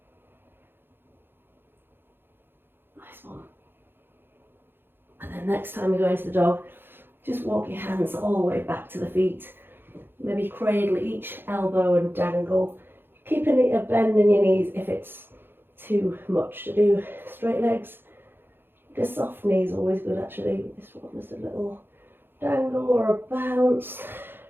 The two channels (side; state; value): left; late; 0.10 ms